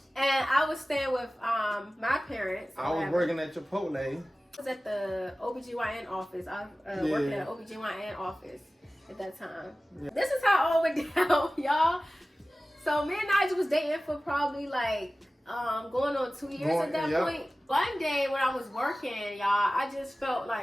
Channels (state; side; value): normal; both; correlation 0.97